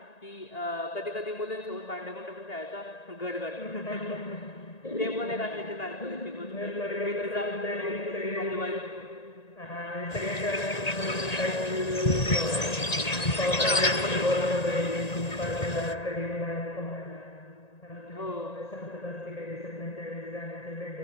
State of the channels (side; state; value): right; late; 1.9 ms